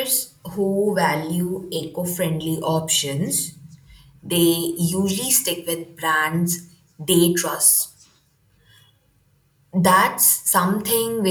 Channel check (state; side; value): identical; both; correlation 1.00